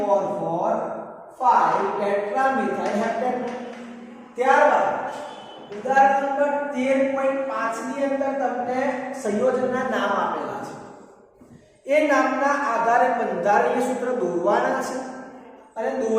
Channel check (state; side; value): identical; both; correlation 1.00